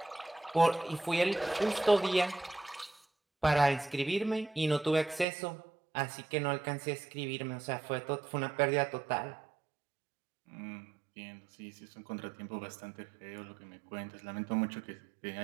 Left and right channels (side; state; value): left; drops out; at 5.2 s